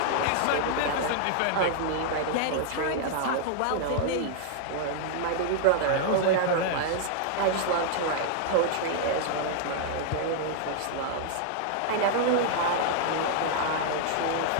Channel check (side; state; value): both; different; correlation -0.01